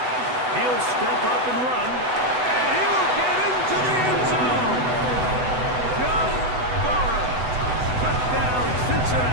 He'll step up and run. And he'll get into the end zone. Joe Burrow. Touchdown,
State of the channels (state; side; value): late; left; 8.0 ms